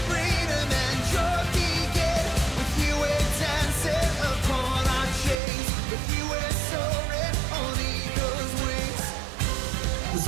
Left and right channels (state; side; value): drops out; left; at 5.4 s